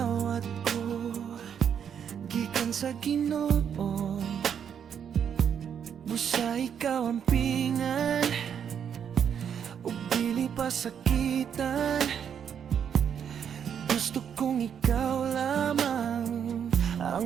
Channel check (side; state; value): left; quieter; 8.1 dB